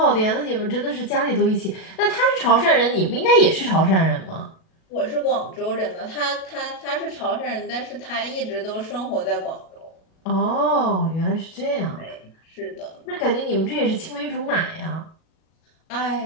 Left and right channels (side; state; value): right; late; 37 ms